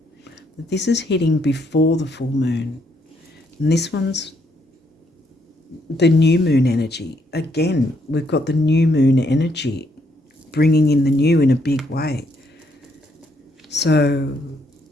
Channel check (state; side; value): normal; both; correlation 0.73